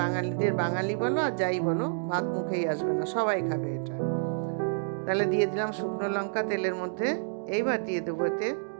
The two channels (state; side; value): silent; left; digital silence